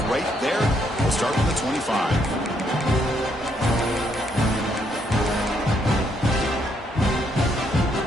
right there. We'll start with the 25.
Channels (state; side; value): normal; both; correlation 0.73